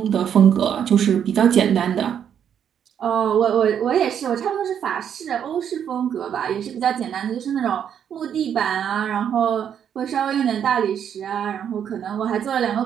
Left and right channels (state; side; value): quieter; left; 8.7 dB